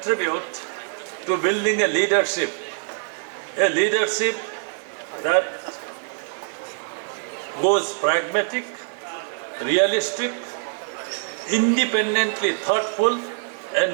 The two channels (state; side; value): silent; left; 63 dB below the other